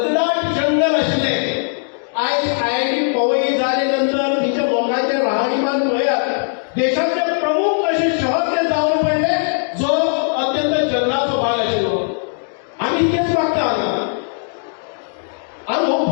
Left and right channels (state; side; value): silent; right; 65 dB below the other